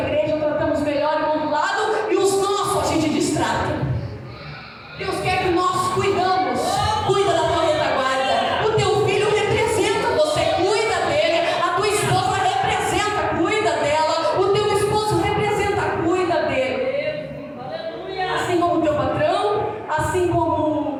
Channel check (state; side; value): identical; both; correlation 1.00